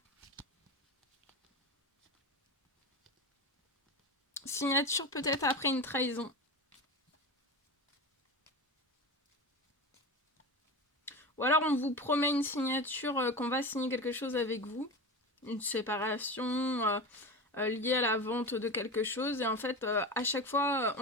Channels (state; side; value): normal; both; correlation 0.25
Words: Signature peut-être après une trahison. Ou alors on vous promet une signature, qu'on va signer quelque chose avec vous. Une séparation liée à la vente de quelque chose. Et en fait, à chaque fois,